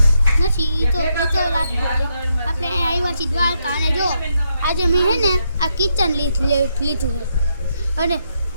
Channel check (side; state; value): both; inverted; correlation -0.79